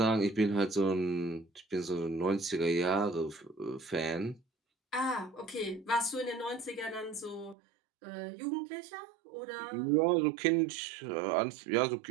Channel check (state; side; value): drops out; left; at 7.6 s